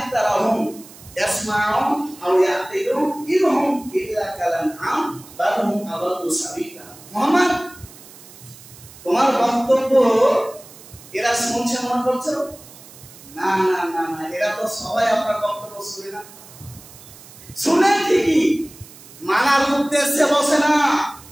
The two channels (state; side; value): noise; right; hiss, 20 dB below the sound